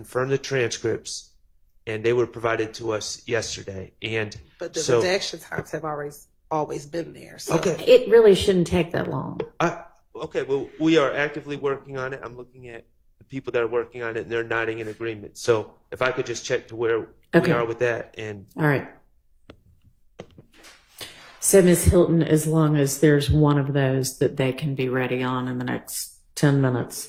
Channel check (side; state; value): both; identical; correlation 1.00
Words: the transcripts, and they were provided to us yesterday. But the redaction times have always been there. So. Okay. It really shouldn't take that long. Okay, well, we are actively working on it. I'm looking at the people that are working on it, and they're nodding in agreement. So if I could just check to where we are with that. All right. So, Ms. Hilton, as long as there's one of those that they can be ready on in the next 10 minutes,